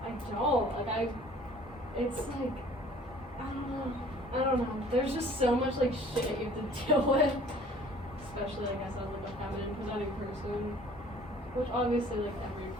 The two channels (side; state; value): both; normal; correlation 0.52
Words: don't. It's I don't know. There's just so much shit you have to deal with, especially I guess as a feminine presenting person, which obviously every